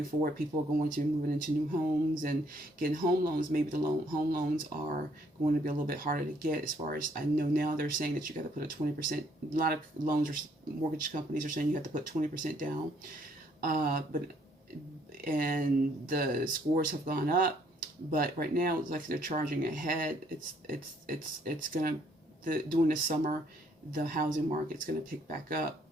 forward. People are going to be moving into new homes and getting home loans. Maybe the home loans are going to be a little bit harder to get. As far as I know now, they're saying that you got to put a 20%. A lot of loans or mortgage companies are saying you have to put 20% down. And the scores have gone up. But right now, it's like they're charging ahead. It's gonna during the summer, the housing market's gonna pick back up,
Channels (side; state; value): both; normal; correlation 0.66